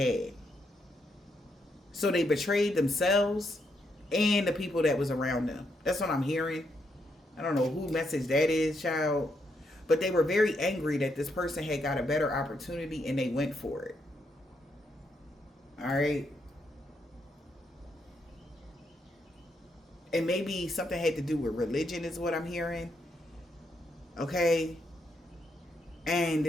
So they betrayed themselves and the people that was around them. That's what I'm hearing. I don't know who message that is, child. But they were very angry that this person had got a better opportunity and they went for it. All right. And maybe something had to do with religion is what I'm hearing. Okay. And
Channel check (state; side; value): normal; both; correlation 0.78